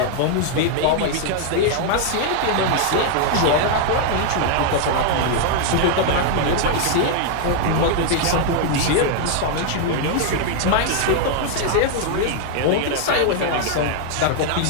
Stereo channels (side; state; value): both; different; correlation 0.00